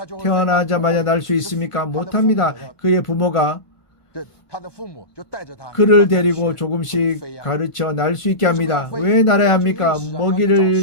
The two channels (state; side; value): late; right; 1.5 ms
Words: 태어나자마자 날 수 있습니까? 못합니다. 그의 부모가 그를 데리고 조금씩 가르쳐 날 수 있게 합니다. 왜 날아야 합니까?